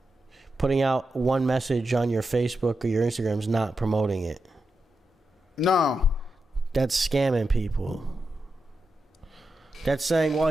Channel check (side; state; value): both; normal; correlation 0.88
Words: Putting out one message on your Facebook or your Instagram is not promoting it. No. That's scamming people. That's saying, well,